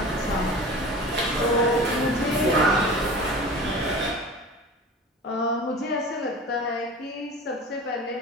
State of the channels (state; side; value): normal; both; correlation 0.36